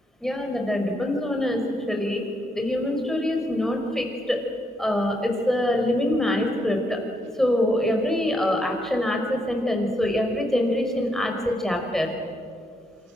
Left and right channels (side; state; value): both; normal; correlation 0.76